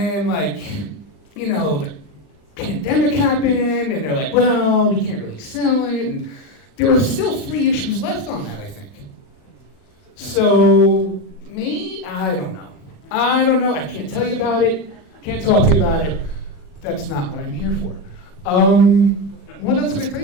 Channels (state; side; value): late; right; 39 ms